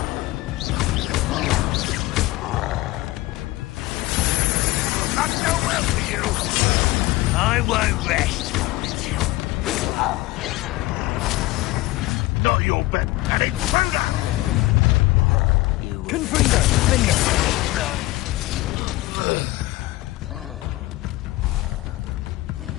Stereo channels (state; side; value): quieter; right; 18.9 dB